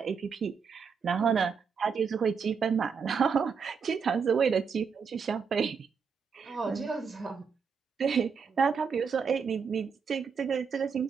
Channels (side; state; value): left; quieter; 6.0 dB